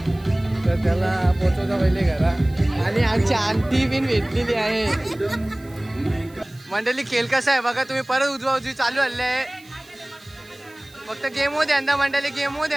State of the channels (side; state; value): right; noise; hiss, 26 dB below the sound